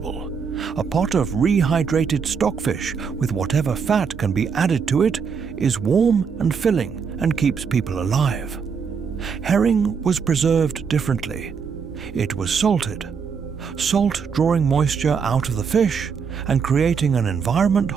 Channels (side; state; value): left; quieter; 6.1 dB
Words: a pot of rehydrated stockfish with whatever fat can be added to it is warm and filling and keeps people alive. Herring was preserved differently. It was salted. Salt drawing moisture out of the fish and creating an environment